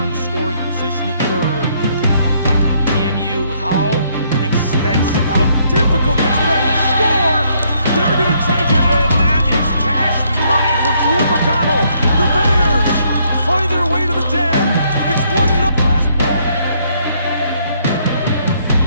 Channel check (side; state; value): both; inverted; correlation -0.69